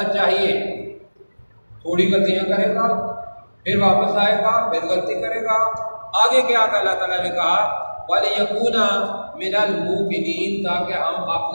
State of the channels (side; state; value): both; inverted; correlation -1.00